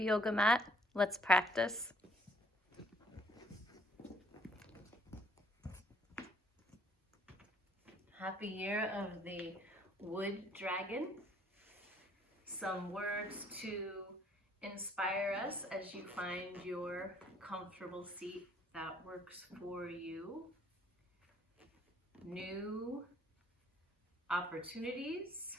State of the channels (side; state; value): both; normal; correlation 0.63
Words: yoga mat, let's practice. Happy year of the wood dragon. Some words to inspire us as you find your comfortable seat that works for you. New opportunities,